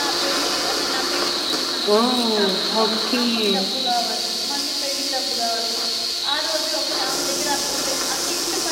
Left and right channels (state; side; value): identical; both; correlation 1.00